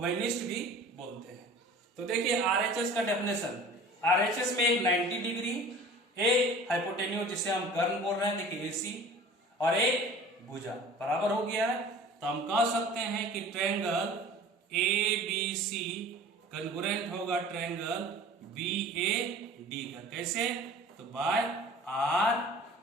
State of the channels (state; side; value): normal; both; correlation 0.43